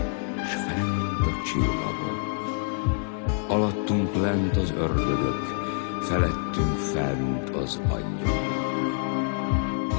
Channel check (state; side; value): silent; right; 61 dB below the other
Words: s fent a csillagok. Alattunk lent az ördögök, felettünk fent az angyalok.